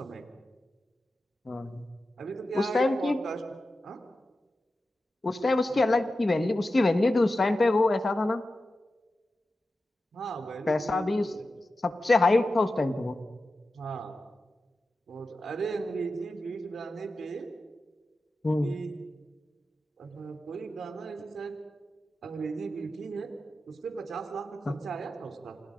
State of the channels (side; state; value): both; normal; correlation 0.92